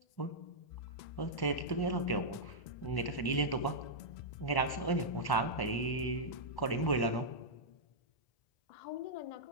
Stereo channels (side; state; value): right; late; 1.1 ms